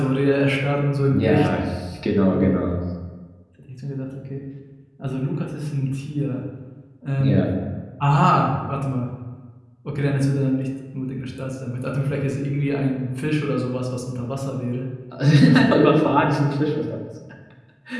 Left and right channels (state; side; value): identical; both; correlation 1.00